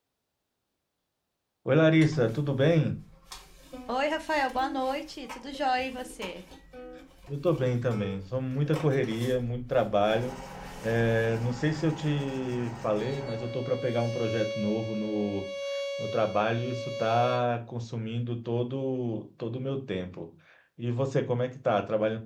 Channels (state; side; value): identical; both; correlation 1.00